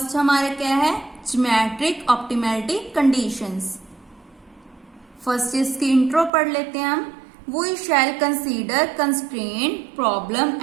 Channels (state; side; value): drops out; left; at 6.3 s